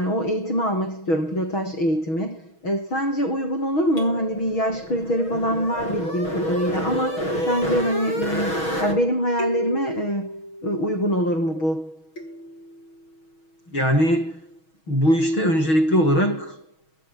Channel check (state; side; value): late; right; 6.3 ms